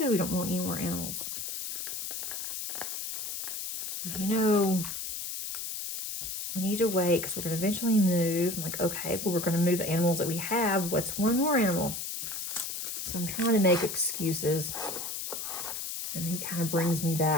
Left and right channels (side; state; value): left; noise; hiss, 5 dB below the sound